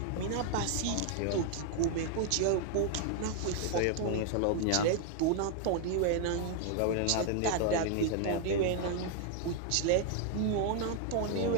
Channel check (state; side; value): different; both; correlation 0.00